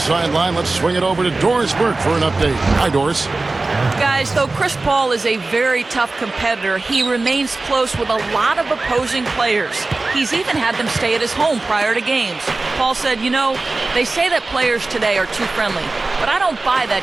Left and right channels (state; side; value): quieter; left; 3.3 dB